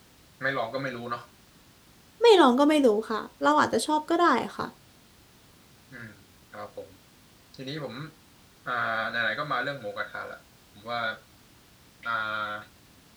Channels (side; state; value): both; identical; correlation 1.00